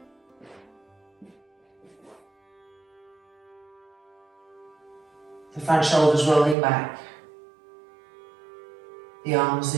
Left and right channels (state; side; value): drops out; left; at 6.6 s